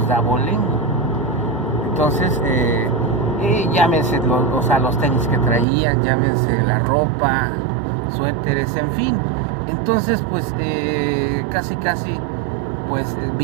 de abolengo. Entonces, llámense los tenis que traían, llámense la ropa, suéteres, en fin. Entonces, pues casi pues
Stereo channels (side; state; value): left; drops out; at 5.7 s